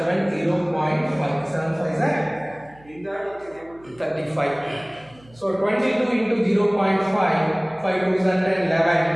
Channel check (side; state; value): right; noise; hum, 27 dB below the sound